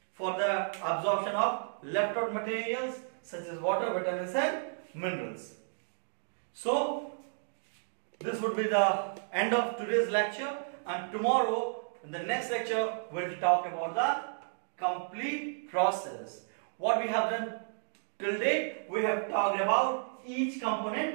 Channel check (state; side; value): silent; left; digital silence